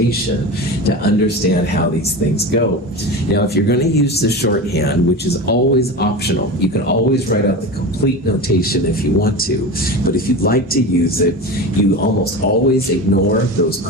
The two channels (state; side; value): normal; both; correlation 0.27